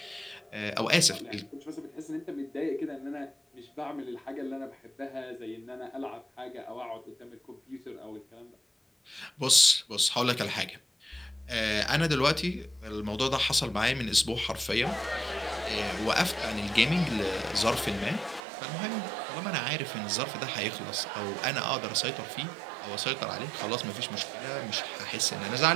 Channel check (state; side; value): drops out; left; at 18.4 s